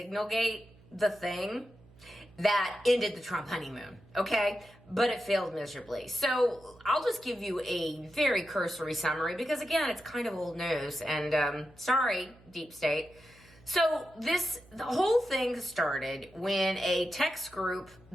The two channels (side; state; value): right; noise; hum, 25 dB below the sound